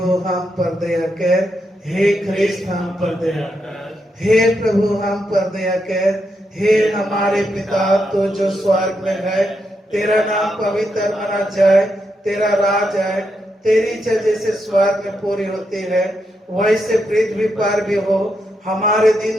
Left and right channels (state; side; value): normal; both; correlation 0.82